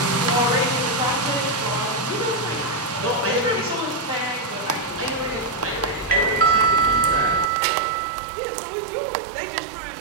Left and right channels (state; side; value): drops out; left; at 7.5 s